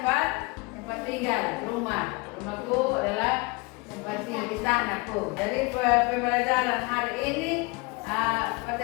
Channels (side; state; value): right; quieter; 26.4 dB